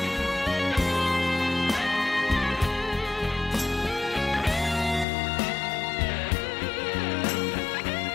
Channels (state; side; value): drops out; right; at 5.1 s